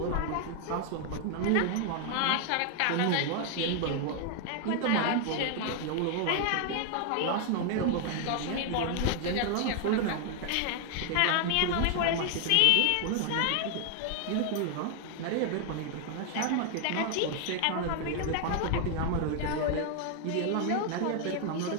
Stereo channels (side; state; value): both; different; correlation 0.00